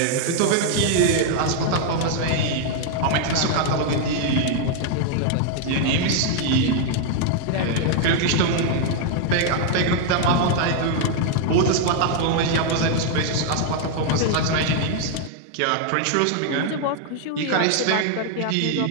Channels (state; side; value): different; both; correlation 0.00